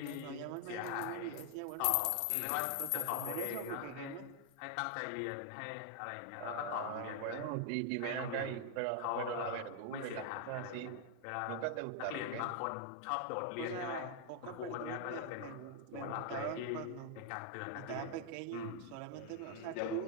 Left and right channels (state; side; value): different; both; correlation 0.00